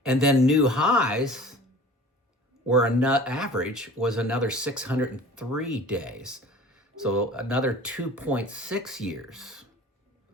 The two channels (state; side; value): normal; both; correlation 0.43